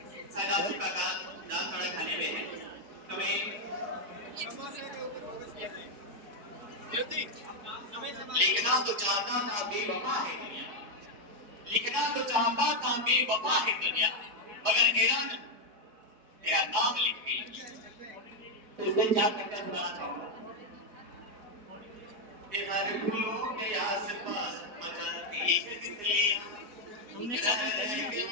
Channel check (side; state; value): left; late; 4.7 ms